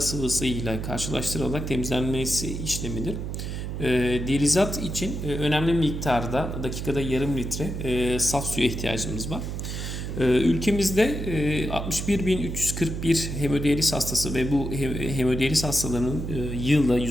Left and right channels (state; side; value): noise; right; hum, 5 dB below the sound